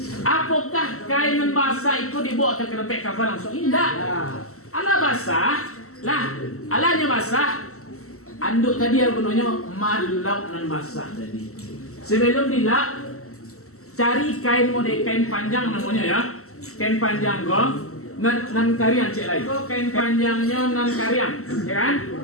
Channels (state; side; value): late; right; 0.63 ms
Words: Apakah kain basah itu dibawa ke tempat kafan langsung? Tidak. Alah basah. Lah, alahnya basah. Anduk tadi yang gunanya malau nan basah tadi. Sebelum dilap, cari kain model kain panjang namanya ya. Kain panjang kok. Nan kariang cek lagi. Kok kain panjangnya nan kariang, ya kan?